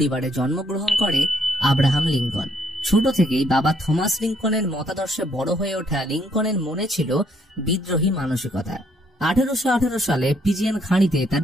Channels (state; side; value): normal; both; correlation 0.70